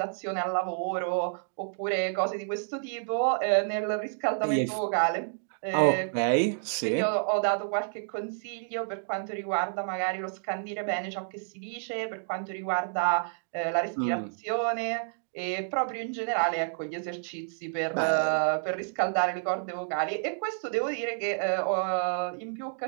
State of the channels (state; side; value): silent; left; digital silence